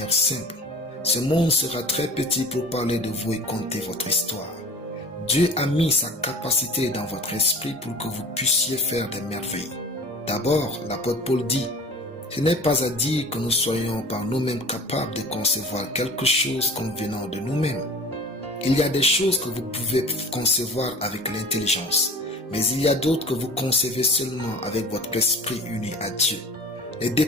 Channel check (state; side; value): normal; both; correlation 0.40